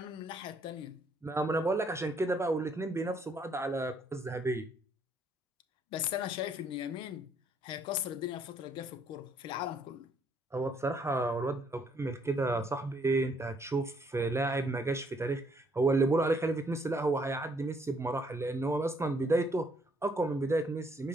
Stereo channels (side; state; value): both; normal; correlation 0.67